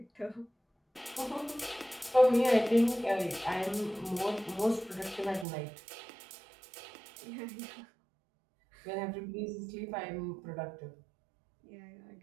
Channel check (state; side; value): drops out; left; at 5.5 s